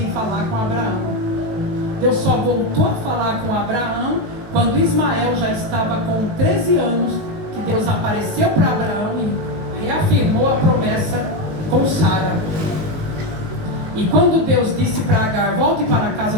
falar com Abraão. Deus só voltou a falar com Abraão quando Ismael já estava com 13 anos, que Deus apareceu para Abraão e reafirmou a promessa com Sara. E quando Deus disse para Agar, volte para a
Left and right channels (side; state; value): left; late; 19 ms